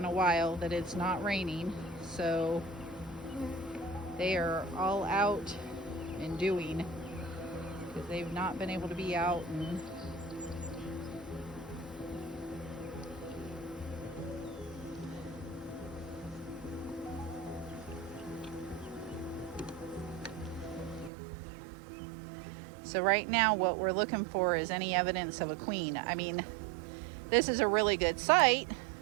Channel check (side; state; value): left; drops out; at 21.1 s